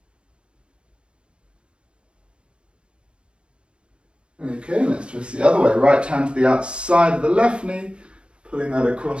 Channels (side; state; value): left; late; 0.054 ms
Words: Okay, let's twist the other way. Right hand to the outside of the left knee, pulling that